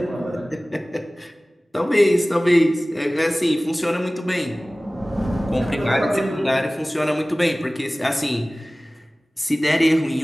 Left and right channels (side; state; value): both; normal; correlation 0.98